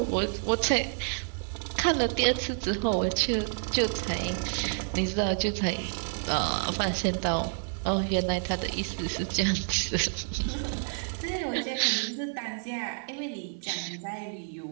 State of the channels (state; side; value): silent; left; 58 dB below the other